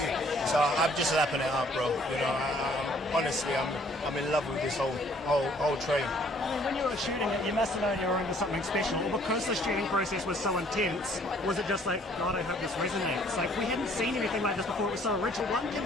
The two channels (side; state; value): both; normal; correlation 0.60